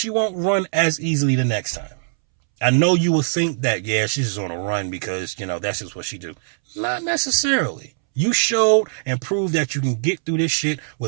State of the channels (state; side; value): silent; left; 65 dB below the other